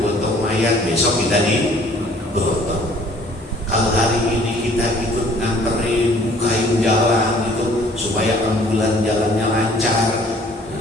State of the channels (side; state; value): both; normal; correlation 0.56